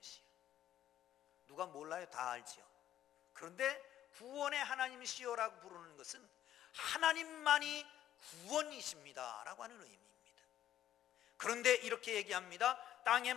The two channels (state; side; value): quieter; right; 11.7 dB